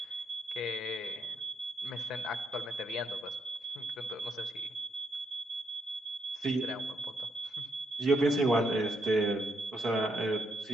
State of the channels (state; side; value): normal; both; correlation 0.77